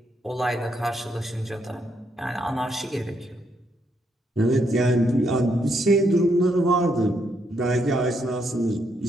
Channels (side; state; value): both; normal; correlation 0.76